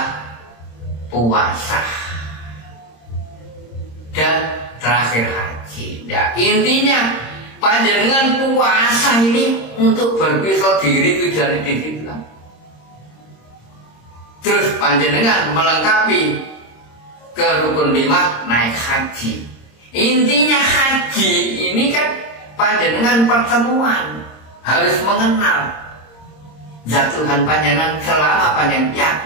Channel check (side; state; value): right; late; 26 ms